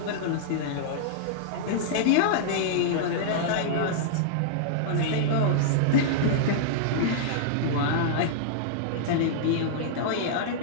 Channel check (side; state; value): both; different; correlation -0.02